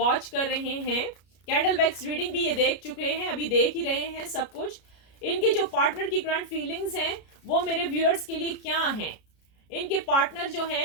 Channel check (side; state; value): right; late; 33 ms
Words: कर रहे हैं, कैंडल वैक्स रीडिंग भी ये देख चुके हैं, अभी देख ही रहे हैं सब कुछ, इनके जो पार्टनर की करंट फीलिंग्स हैं वो मेरे व्यूअर्स के लिए क्या हैं। इनके पार्टनर जो